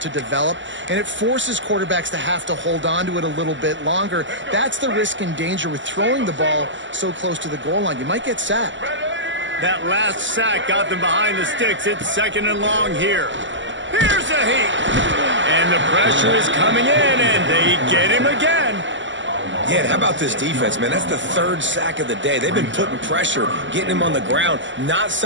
develop, and it forces quarterbacks to have to hold on to it a little bit longer. That's the risk and danger with throwing the ball so close to the goal line. You might get sacked. That last sack got them behind the sticks. It's 2nd and long here. Here's a heat. And the pressure is coming in, and they get him again. Yeah, how about this defense, man? That's the 3rd sack of the day. They've been putting pressure, getting him on the ground. Not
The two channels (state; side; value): late; left; 0.54 ms